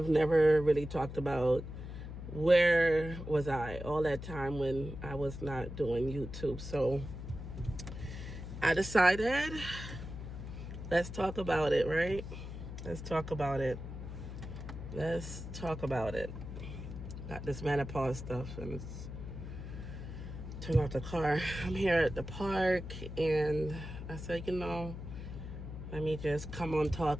never really talked about where was I all that time when I was not doing YouTube. So I decided, let's talk about it, right? Let's talk about it. Got this menopause stuff and it's turn off the car. I'm here at the park and I said, let me just come on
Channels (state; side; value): noise; left; hum, 9 dB below the sound